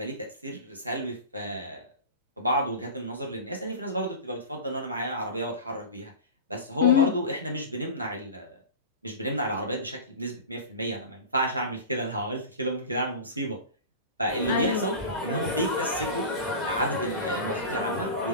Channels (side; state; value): both; inverted; correlation -0.31